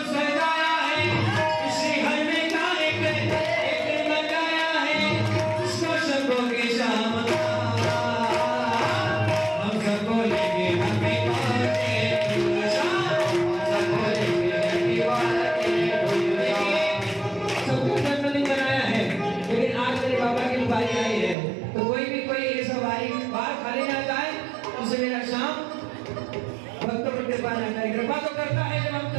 सजाया है, इसी घर में का एक लगाया है, इसको सबको की शाम हम सबको लेंगे हमें सबको लेंगे सबको जन्मदिन बनाया है, लेकिन आज मेरे बाबा की बारी आई है, तो कोई भी कोई ऐसा बारी बाहर खाली ना जाए, उसे मेरा शाम भक्तों पर कृपा न करे। कृपा तो करता है जब हम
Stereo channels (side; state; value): left; drops out; at 21.4 s